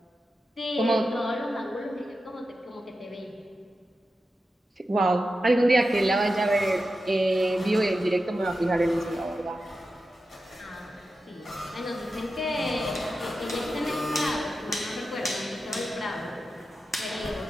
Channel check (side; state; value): both; normal; correlation 0.91